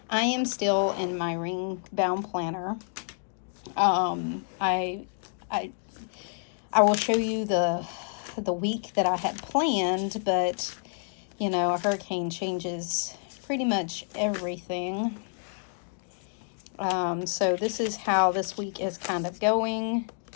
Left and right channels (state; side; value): silent; right; 59 dB below the other